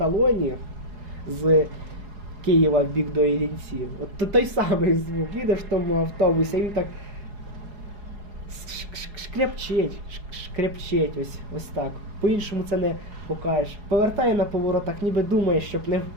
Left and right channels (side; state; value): left; late; 4.8 ms